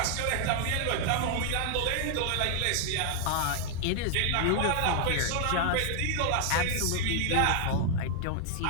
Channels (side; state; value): both; different; correlation 0.00